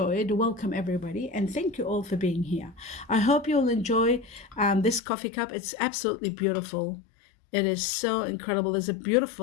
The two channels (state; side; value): drops out; right; at 5.0 s